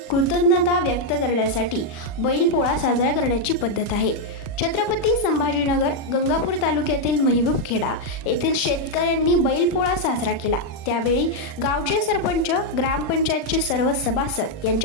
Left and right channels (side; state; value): right; late; 40 ms